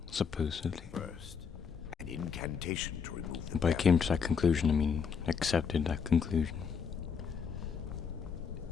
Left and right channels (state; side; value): quieter; right; 6.3 dB